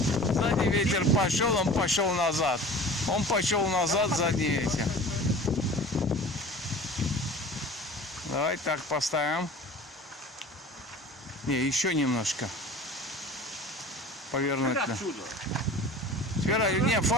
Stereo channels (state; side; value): normal; both; correlation 0.41